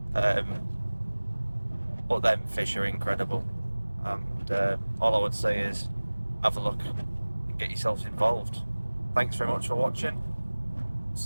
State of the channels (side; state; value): both; inverted; correlation -1.00